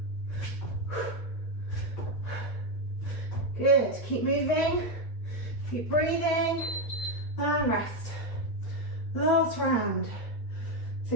Good. Keep moving. Keep breathing. And rest. Last round. So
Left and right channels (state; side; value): late; right; 8.8 ms